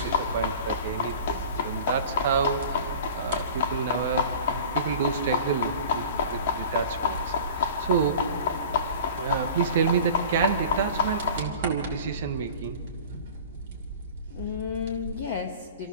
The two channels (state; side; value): inverted; both; correlation -0.39